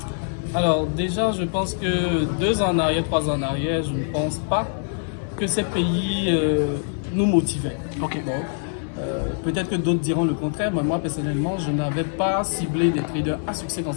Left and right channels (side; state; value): right; silent; digital silence